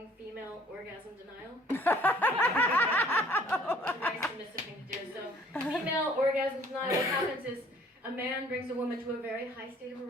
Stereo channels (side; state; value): both; normal; correlation 0.56